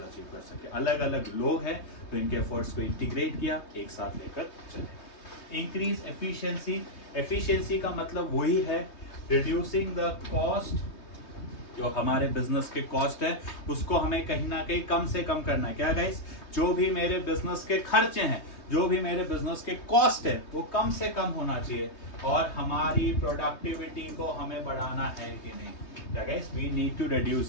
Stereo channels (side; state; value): right; late; 3.2 ms